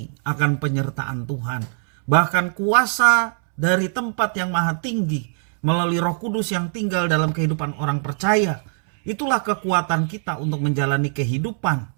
akan penyertaan Tuhan, bahkan kuasa dari tempat yang maha tinggi melalui Roh Kudus yang tinggal dalam kehidupan orang percaya. Itulah kekuatan kita untuk menjalani kehidupan,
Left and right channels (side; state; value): left; silent; 65 dB below the other